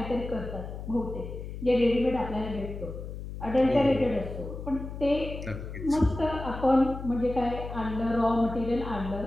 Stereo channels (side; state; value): left; noise; hum, 9 dB below the sound